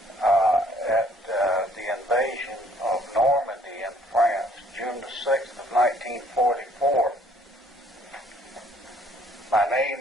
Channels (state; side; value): normal; both; correlation 0.62